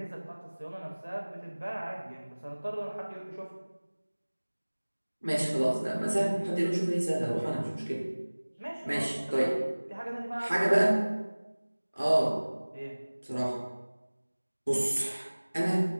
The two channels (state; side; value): inverted; both; correlation -1.00